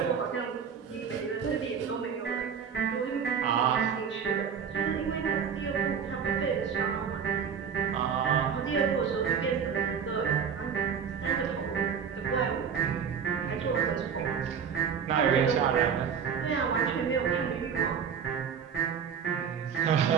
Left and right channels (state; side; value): quieter; left; 7.0 dB